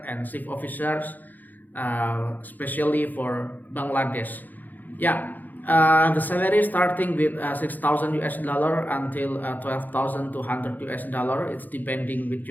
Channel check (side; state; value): right; late; 0.084 ms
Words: and ship officers, especially for Bangladesh. Yeah, the salary starting with 6,000 US dollar until 12,200 US dollar. It's depending with